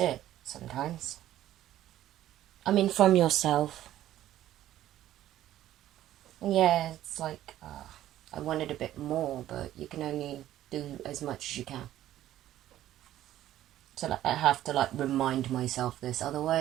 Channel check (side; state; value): left; quieter; 13.2 dB